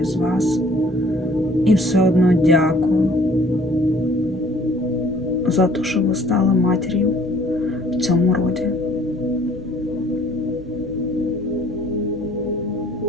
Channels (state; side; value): normal; both; correlation 0.56